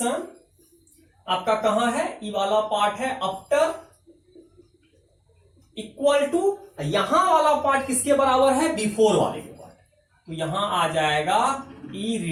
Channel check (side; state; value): both; identical; correlation 1.00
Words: आपका कहां है, ई वाला पार्ट है आफ्टर, इक्वल टू यहां वाला पार्ट किसके बराबर है, बिफोर वाले के पार्ट। तो यहां आ जाएगा ई